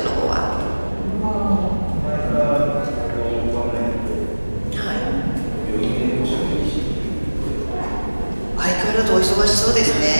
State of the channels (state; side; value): inverted; both; correlation -1.00